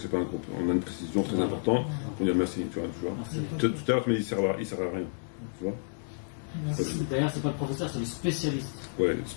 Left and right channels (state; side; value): silent; right; 58 dB below the other